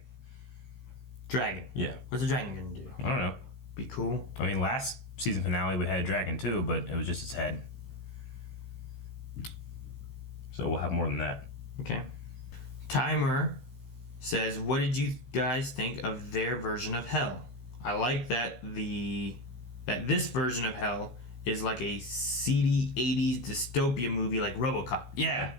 Dragon? Yeah. What's a dragon gonna do? I don't know. Be cool? I mean, last season finale we had a dragon too, but it was just its head. So we'll have more than that. Okay. Timer says, what did you guys think of their version of hell? I like that this version of hell is like a seedy 80s dystopia movie like RoboCop. Yeah,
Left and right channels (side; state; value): right; late; 16 ms